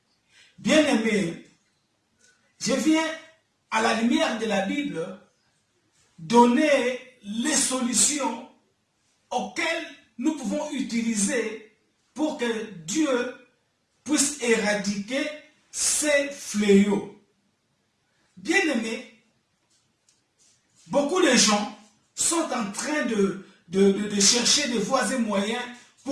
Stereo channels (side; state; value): both; identical; correlation 1.00